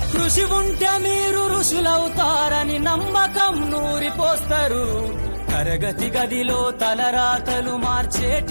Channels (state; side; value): inverted; both; correlation -1.00